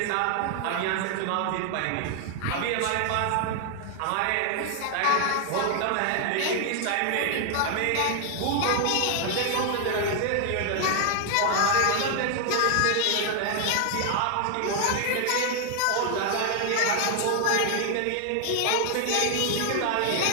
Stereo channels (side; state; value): both; different; correlation 0.00